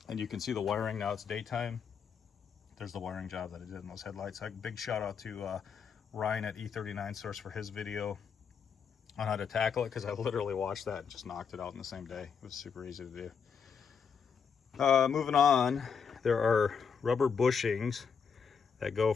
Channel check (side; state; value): right; quieter; 6.5 dB